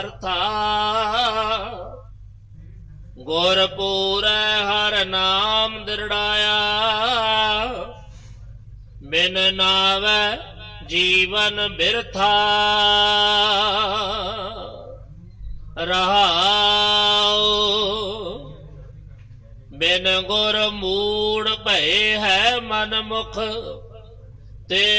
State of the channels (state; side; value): identical; both; correlation 1.00